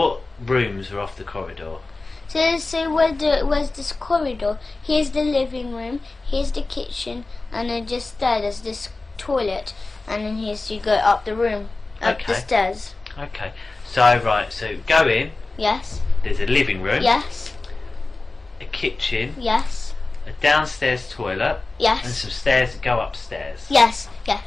rooms are off the corridor? So where's this corridor? Here's the living room, here's the kitchen, and then just there's this toilet, and then here's you go up the room, up the stairs. Okay. So so go in. Yes. There's a living room. Yes. A kitchen. Yes. A downstairs toilet. Yes. And some stairs that go upstairs. Yes.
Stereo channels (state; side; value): quieter; right; 3.4 dB